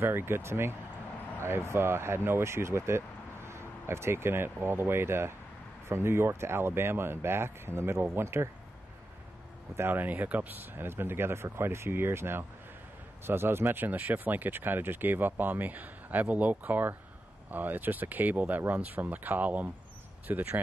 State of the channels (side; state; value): both; normal; correlation 0.89